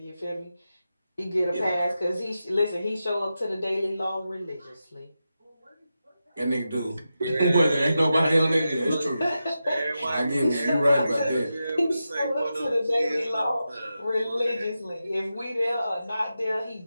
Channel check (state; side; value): inverted; both; correlation -0.90